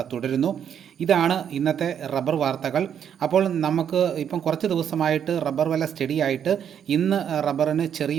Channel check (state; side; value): quieter; left; 8.6 dB